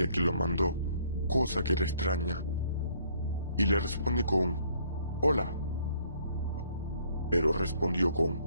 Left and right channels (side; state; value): both; inverted; correlation -0.63